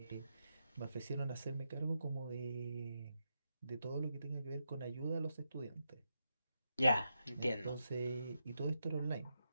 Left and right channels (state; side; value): inverted; both; correlation -0.85